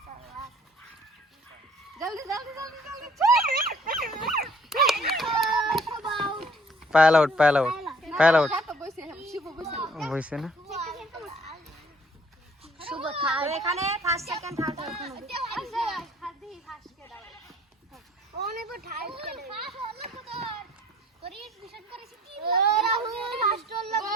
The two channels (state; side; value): normal; both; correlation 0.57